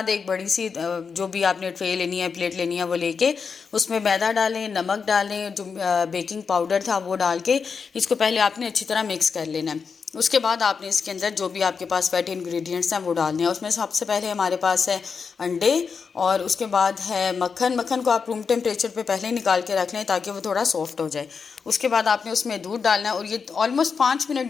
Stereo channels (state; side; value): quieter; right; 5.6 dB